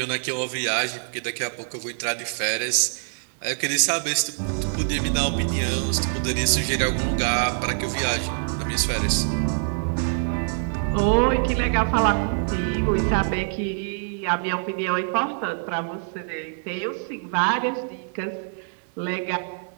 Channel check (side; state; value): left; silent; digital silence